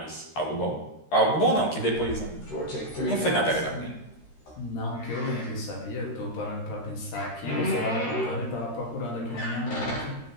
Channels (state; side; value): late; right; 13 ms